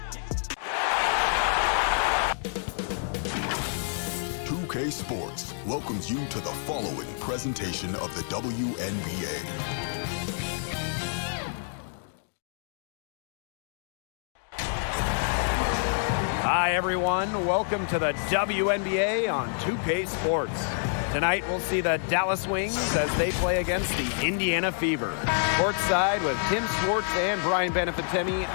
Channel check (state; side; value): silent; right; digital silence